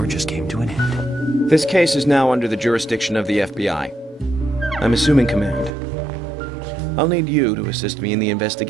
just came to an end. This case is now under the jurisdiction of the FBI. I'm assuming command. I'll need you to assist me in the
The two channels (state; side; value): drops out; left; at 5.7 s